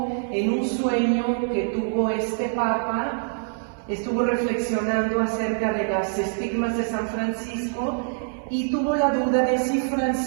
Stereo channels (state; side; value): silent; left; 62 dB below the other